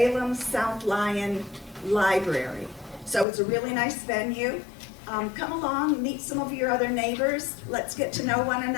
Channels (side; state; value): right; drops out; at 3.2 s